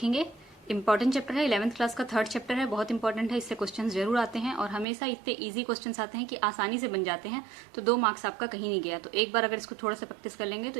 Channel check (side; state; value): left; drops out; at 4.9 s